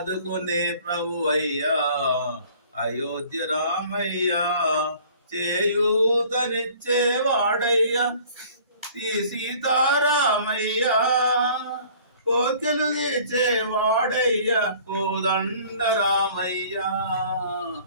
ప్రభువయ్యా అయోధ్య రామయ్య చేయూతనిచ్చేవాడయ్యా సీతారామయ్య కోకెలు తీర్చేవాడయ్యా కోదండ రామయ్య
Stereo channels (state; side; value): inverted; both; correlation -0.52